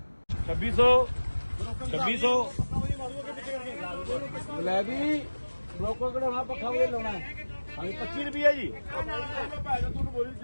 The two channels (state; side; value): inverted; both; correlation -1.00